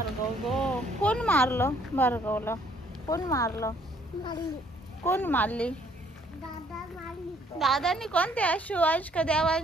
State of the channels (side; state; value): both; normal; correlation 0.63